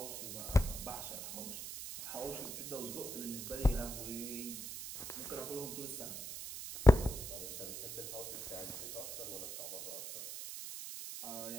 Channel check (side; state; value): right; noise; hiss, 7 dB below the sound